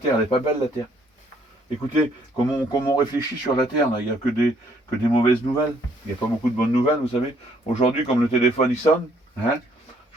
elle n'est pas belle, la terre. Écoutez, comme on réfléchit sur la terre, là, il n'y a que des mauvaises nouvelles. Il n'y a pas beaucoup de bonnes nouvelles, vous savez. Aujourd'hui, comme le téléphone, il sonne, hein,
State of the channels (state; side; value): normal; both; correlation 0.65